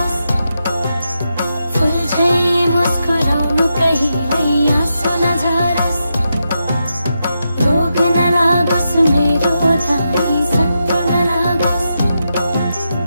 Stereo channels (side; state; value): both; inverted; correlation -0.86